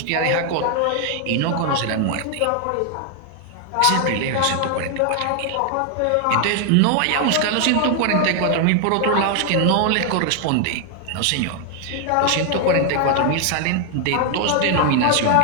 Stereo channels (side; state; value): both; different; correlation 0.00